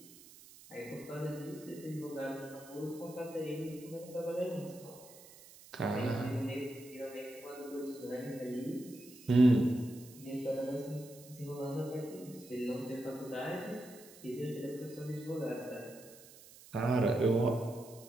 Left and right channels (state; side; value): noise; right; hiss, 20 dB below the sound